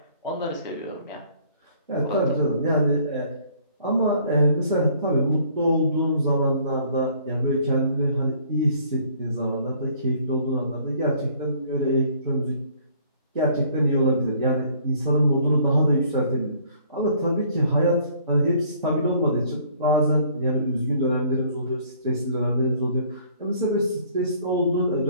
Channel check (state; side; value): inverted; both; correlation -0.59